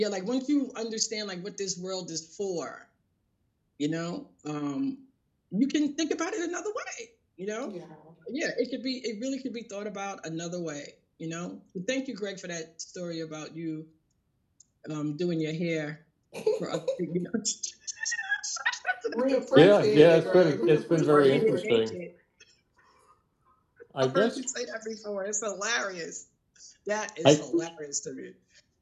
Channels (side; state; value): both; identical; correlation 1.00